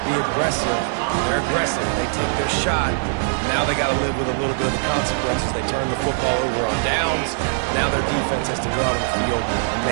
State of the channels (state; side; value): silent; left; digital silence